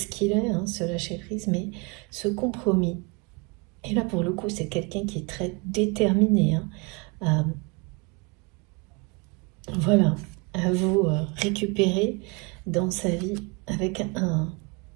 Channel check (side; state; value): left; quieter; 29.5 dB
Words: qu'il est, hein, ce lâcher-prise, mais ce compromis. Et là, pour le coup, c'est quelqu'un qui est très déterminé, hein, voilà, à vous récupérer dans sa vie avec